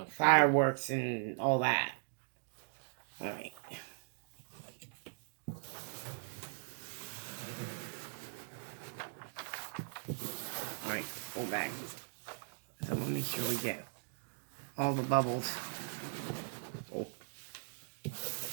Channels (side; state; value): left; silent; digital silence